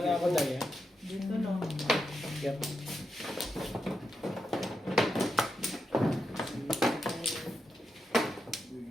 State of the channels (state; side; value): normal; both; correlation 0.86